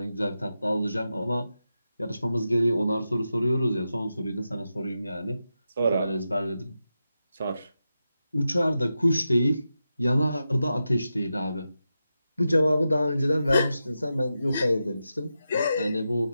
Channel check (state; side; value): inverted; both; correlation -0.89